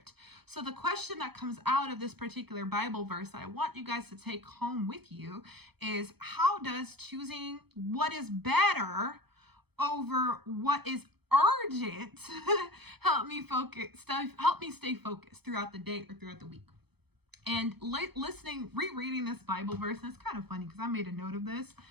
So the question that comes out of this particular Bible verse that I want you guys to take home with you is, how does choosing what is better over what is urgent help me stay focused throughout the day or throughout the week? And rereading this Bible verse, and it's kind of funny because I made a note of this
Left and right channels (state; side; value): late; left; 0.98 ms